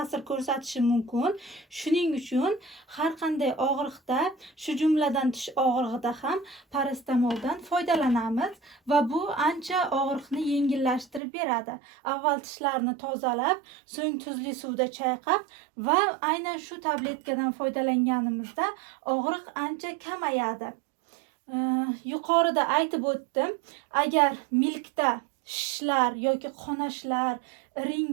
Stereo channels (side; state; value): left; drops out; at 11.2 s